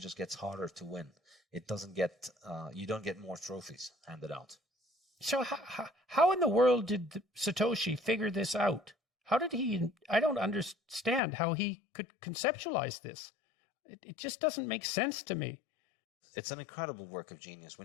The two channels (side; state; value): right; drops out; at 11.2 s